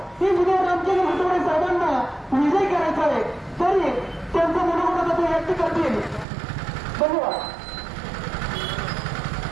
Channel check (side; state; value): left; drops out; at 6.2 s